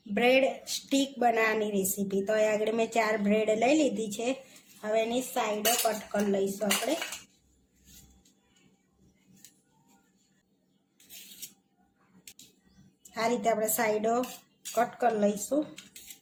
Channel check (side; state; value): both; identical; correlation 1.00